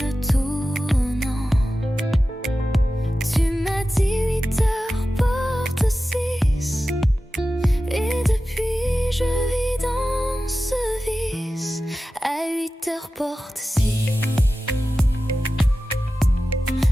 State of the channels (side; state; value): both; normal; correlation 0.94